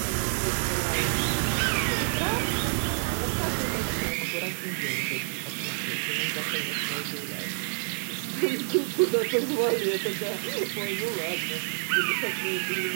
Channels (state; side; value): silent; left; digital silence